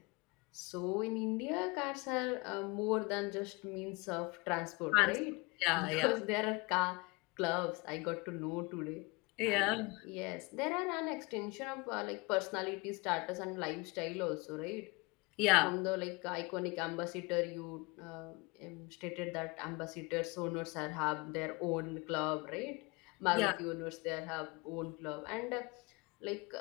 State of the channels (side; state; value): right; quieter; 26.5 dB